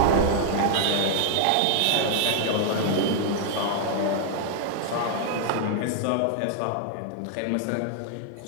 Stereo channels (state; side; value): different; both; correlation -0.01